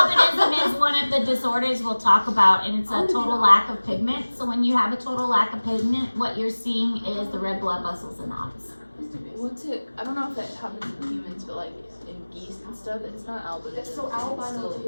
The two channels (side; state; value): both; inverted; correlation -1.00